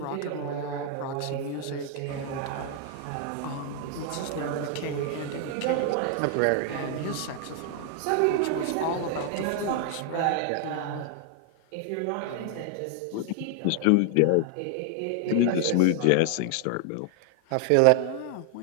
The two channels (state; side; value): different; both; correlation 0.00